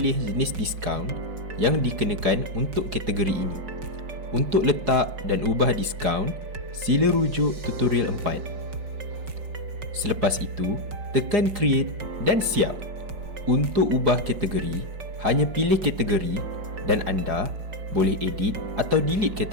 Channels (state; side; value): late; left; 4.8 ms